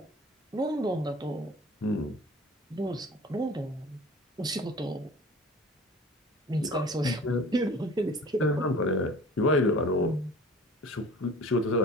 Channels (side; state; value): both; normal; correlation 0.44